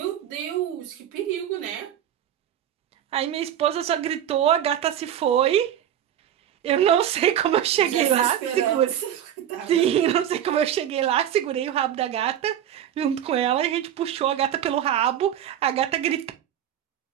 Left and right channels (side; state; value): left; quieter; 10.4 dB